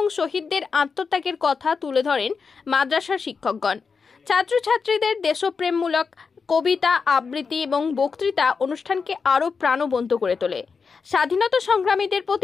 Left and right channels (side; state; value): right; quieter; 5.3 dB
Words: শহীদদের আত্মত্যাগের কথা তুলে ধরেন মাদ্রাসার শিক্ষকগণ। ছাত্রছাত্রীদের দেশপ্রেমমূলক কবিতা, আবৃত্তি এবং বক্তৃতা অনুষ্ঠানকে আরও প্রাণবন্ত করে তোলে। স্বাধীনতা সংগ্রামীদের